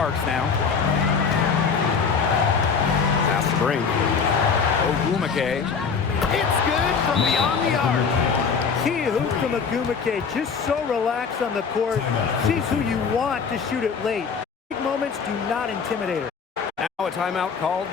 now. Pass to Brink. Ogumake. It's good from beyond the arc. Key hoop from Agumake, just so relaxed on the court. She's who you want to shoot it late. Big moments do not intimidate her. Now a timeout called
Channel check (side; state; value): right; quieter; 5.8 dB